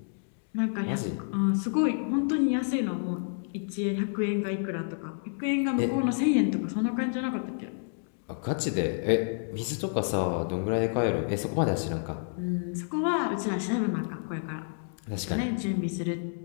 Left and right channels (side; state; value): right; silent; digital silence